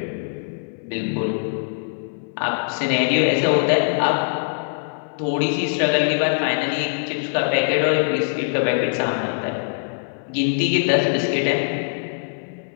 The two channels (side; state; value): right; silent; 64 dB below the other